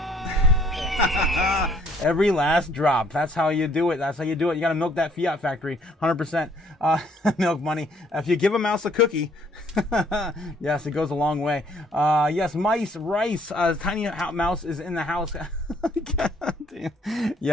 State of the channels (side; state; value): both; normal; correlation 0.63